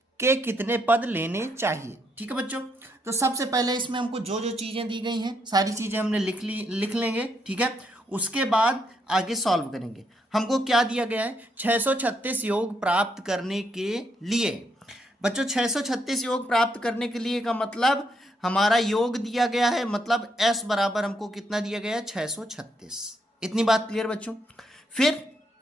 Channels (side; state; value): both; normal; correlation 0.76